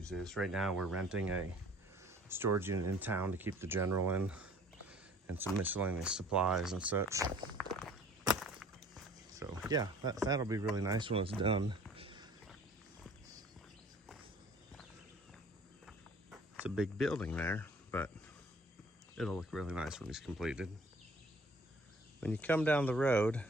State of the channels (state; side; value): normal; both; correlation 0.52